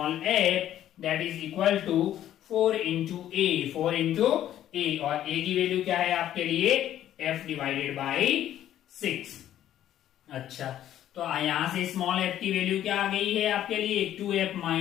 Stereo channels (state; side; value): quieter; right; 11.9 dB